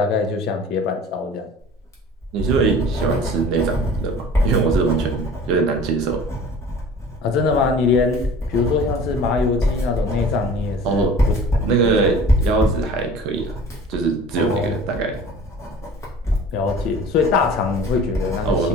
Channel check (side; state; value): both; normal; correlation 0.44